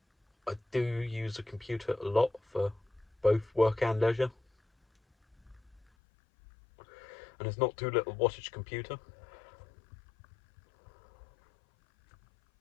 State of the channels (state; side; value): drops out; right; at 5.8 s